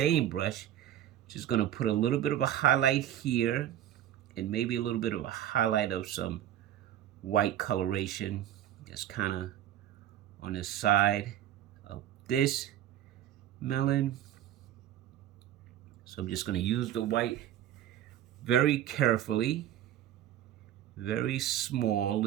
brush, just going to put a little bit of a highlight here, and maybe a little bit of a highlight of some white coloration, just kind of on the side of this melon. So I'm just going to use the white very carefully, very small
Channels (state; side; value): quieter; left; 11.6 dB